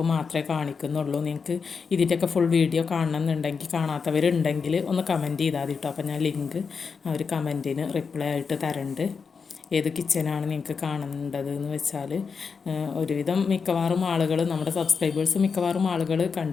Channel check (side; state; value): right; quieter; 5.5 dB